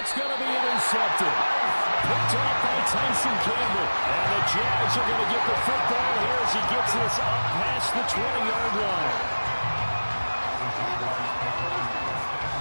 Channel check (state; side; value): inverted; both; correlation -1.00